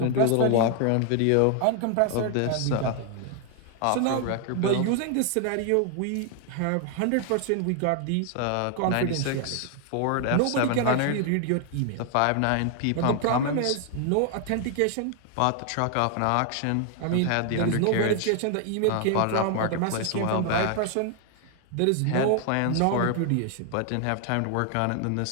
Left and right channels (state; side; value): different; both; correlation 0.00